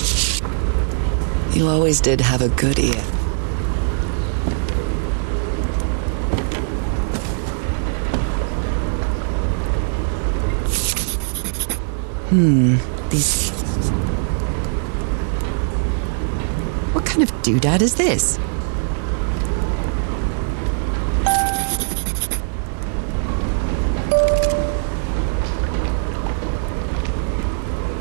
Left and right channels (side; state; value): left; silent; 58 dB below the other